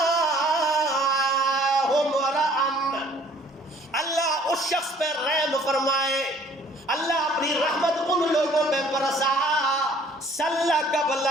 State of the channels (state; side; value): normal; both; correlation 0.56